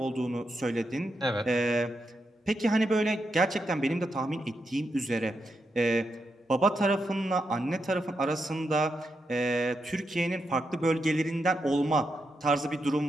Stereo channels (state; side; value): normal; both; correlation 0.84